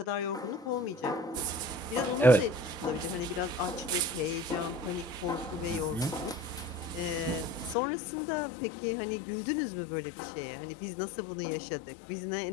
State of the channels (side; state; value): right; drops out; at 7.8 s